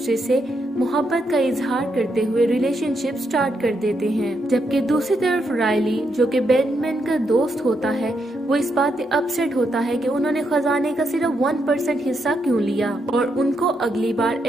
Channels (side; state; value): both; normal; correlation 0.80